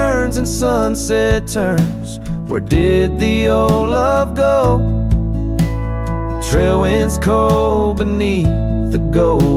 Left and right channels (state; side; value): identical; both; correlation 1.00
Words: and sunset turns. Where did the old love go? Trail winds cold beneath the